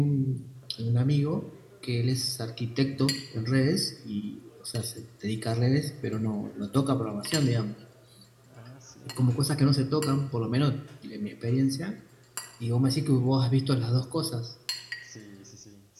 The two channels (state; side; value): identical; both; correlation 1.00